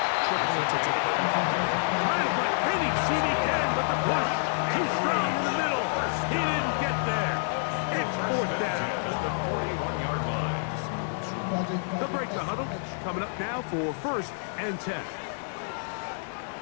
trickle into today? Trying to find any seam he can, but the push too strong in the middle. He didn't get there. It's fourth down. The break the huddle coming up now for first and 10.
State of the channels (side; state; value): right; silent; 59 dB below the other